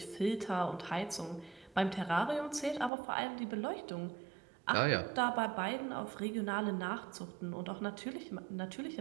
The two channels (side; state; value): left; drops out; at 2.9 s